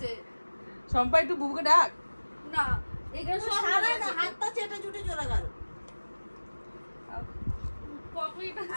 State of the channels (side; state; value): both; inverted; correlation -1.00